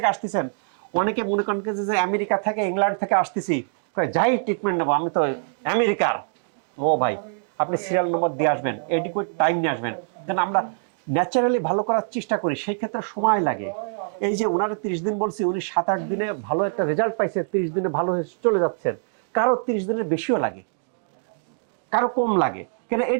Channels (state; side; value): silent; left; digital silence